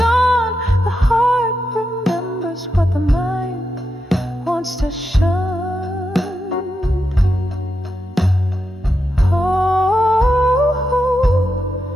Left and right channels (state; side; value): normal; both; correlation 0.86